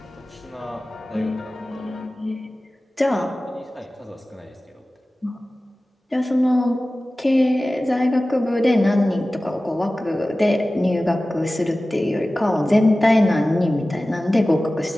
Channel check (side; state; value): both; normal; correlation 0.97